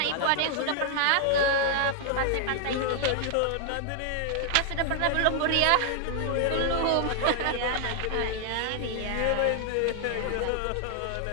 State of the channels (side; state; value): both; different; correlation 0.00